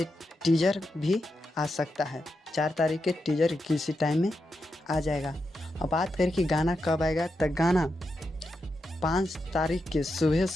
टीजर भी आ सकता है। 4 तारीख के टीजर किसी टाइम में आ जाएगा। अब बात करें कि गाना कब आएगा, तो गाना 5 तारीख के सुबह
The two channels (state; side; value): normal; both; correlation 0.86